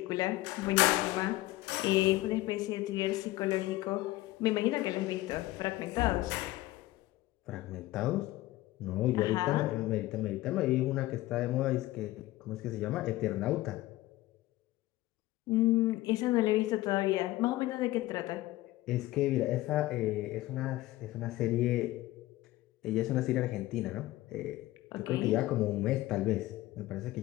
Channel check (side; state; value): right; quieter; 17.5 dB